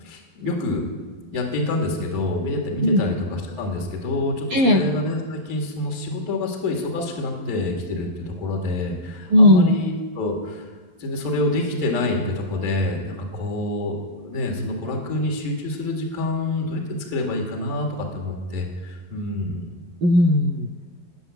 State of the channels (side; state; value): left; late; 11 ms